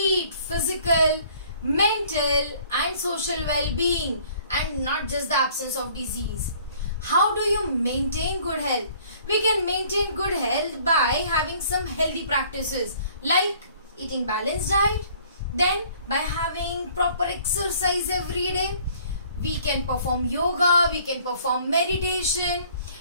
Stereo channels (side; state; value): both; inverted; correlation -0.56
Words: physical, mental and social well-being, and not just the absence of disease. How do you maintain good health? We can maintain good health by having some healthy practices like eating balanced diet, then by having proper exercise every day. We can perform yoga, we can perform meditation,